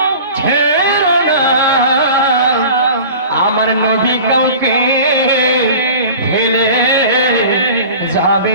আমার নবী কাউকে ফেলে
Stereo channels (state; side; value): inverted; both; correlation -0.40